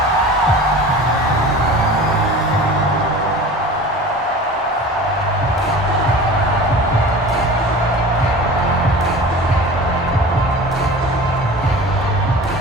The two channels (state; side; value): normal; both; correlation 0.38